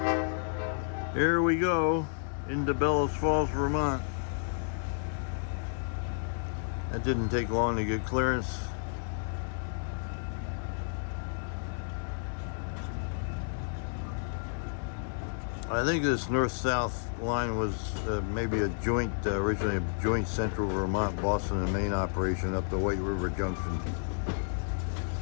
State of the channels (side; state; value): right; silent; digital silence